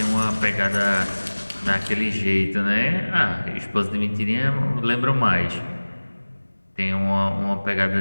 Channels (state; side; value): inverted; both; correlation -1.00